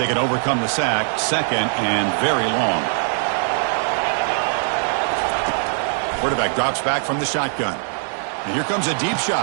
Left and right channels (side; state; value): left; silent; 64 dB below the other